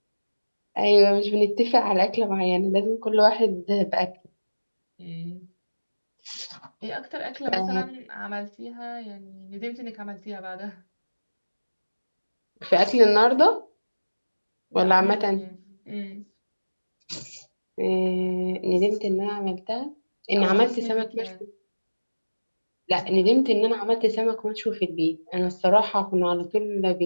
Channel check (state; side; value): inverted; both; correlation -1.00